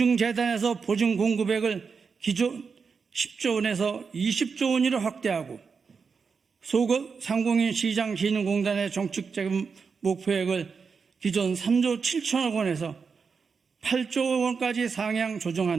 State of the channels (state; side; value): quieter; left; 5.4 dB